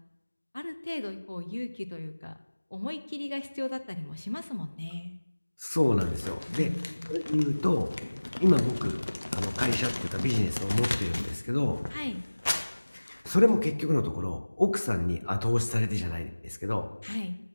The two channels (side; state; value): both; inverted; correlation -1.00